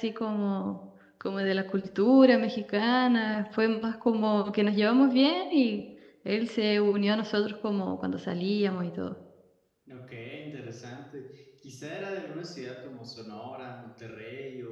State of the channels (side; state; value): both; identical; correlation 1.00